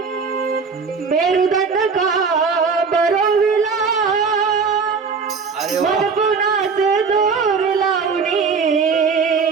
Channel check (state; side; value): quieter; left; 5.3 dB